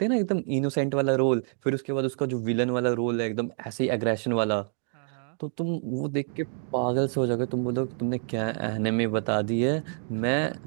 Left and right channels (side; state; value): left; silent; digital silence